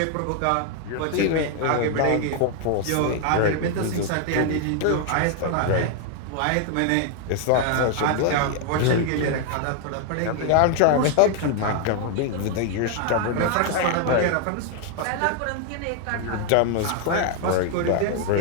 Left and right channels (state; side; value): different; both; correlation 0.00